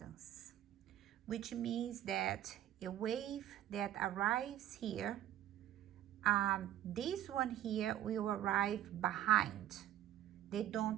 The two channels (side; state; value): left; quieter; 12.2 dB